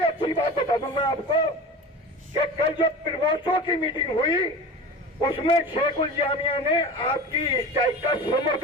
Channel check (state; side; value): normal; both; correlation 0.33